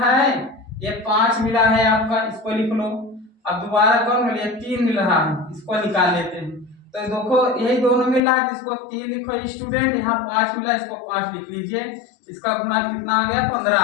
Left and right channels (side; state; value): right; drops out; at 8.2 s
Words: है, ये 5 मिला है आपका, इसको लिख लो। अब दोबारा कौन मिला, 3 मिल रहा है, इसको निकाल लेते हैं। तो देखो यही दोनों मिल रहा है, इसको 3 लिखो स्टूडेंट, यहाँ 5 मिला, इसको 5 लिख लीजिए। इसका गुना कितना आ गया, 15